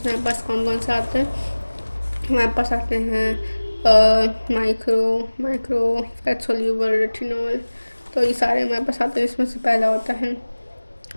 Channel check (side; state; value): both; inverted; correlation -1.00